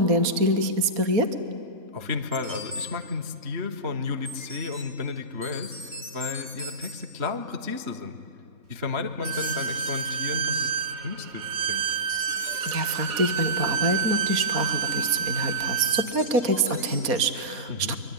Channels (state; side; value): late; left; 4.2 ms